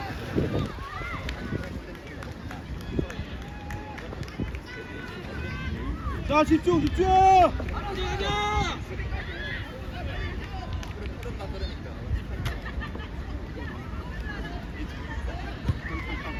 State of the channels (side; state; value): both; identical; correlation 1.00